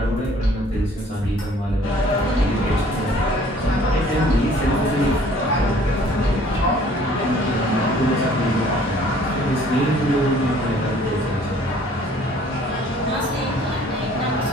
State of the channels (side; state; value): both; normal; correlation 0.55